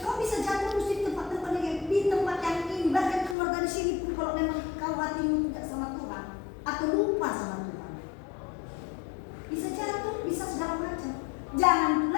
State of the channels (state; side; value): drops out; right; at 3.4 s